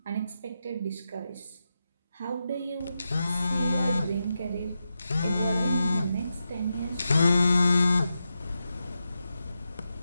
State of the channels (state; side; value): inverted; both; correlation -0.88